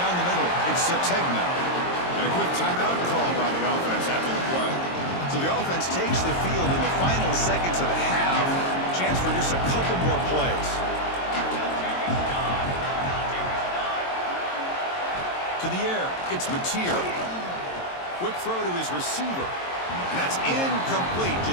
the middle. It's Sategna. And a quick timeout call by the offense after the play. So the offense takes the field in the final seconds of the half. Chance for just a couple more plays. To the air. It's Mateer. Quick throw to his receiver. And that's incomplete.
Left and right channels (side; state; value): right; late; 22 ms